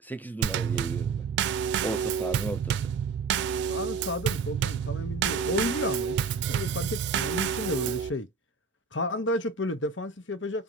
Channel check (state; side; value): quieter; left; 4.5 dB